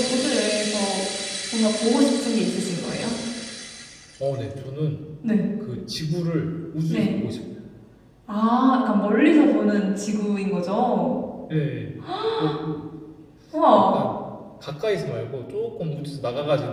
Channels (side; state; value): both; identical; correlation 1.00